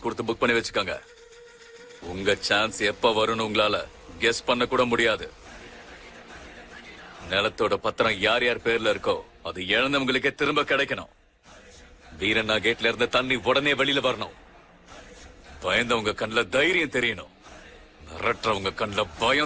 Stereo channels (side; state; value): both; identical; correlation 1.00